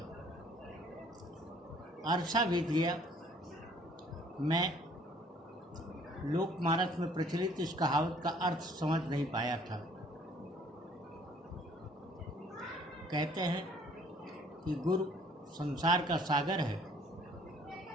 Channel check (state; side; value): normal; both; correlation 0.58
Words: अरसा बीत गया, मैं लोकमानस में प्रचलित इस कहावत का अर्थ समझ नहीं पाया था। कहते हैं कि गुरु संसार का सागर है,